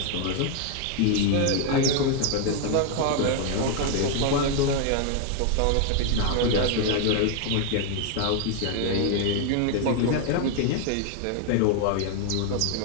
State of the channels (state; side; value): different; both; correlation 0.00